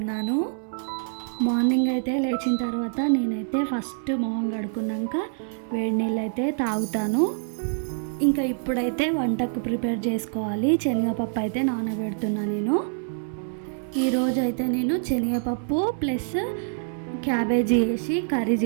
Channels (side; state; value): left; silent; 58 dB below the other